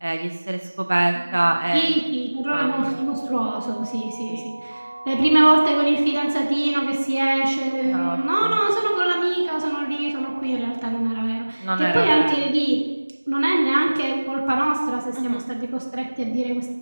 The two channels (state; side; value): inverted; both; correlation -1.00